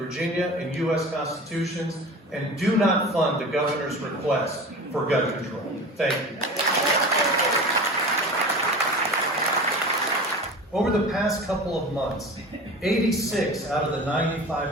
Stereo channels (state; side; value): normal; both; correlation 0.35